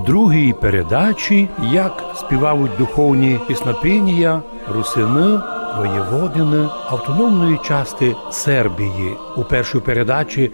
другій передачі, як співають духовні піснопіння русини, воєводини автономної частини Сербії. У першій передачі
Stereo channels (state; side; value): inverted; both; correlation -1.00